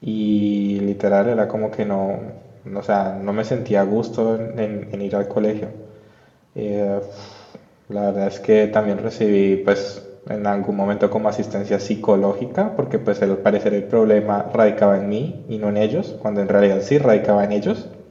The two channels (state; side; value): identical; both; correlation 1.00